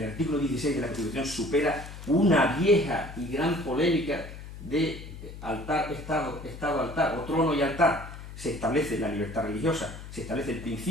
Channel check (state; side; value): noise; left; hum, 12 dB below the sound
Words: artículo 16 de la Constitución supera una vieja y gran polémica de altar, estado, altar, o trono y altar. Se establece la libertad religiosa, se establece el